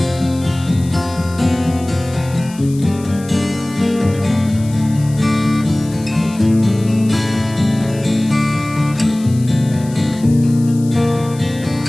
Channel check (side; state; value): left; noise; hiss, 20 dB below the sound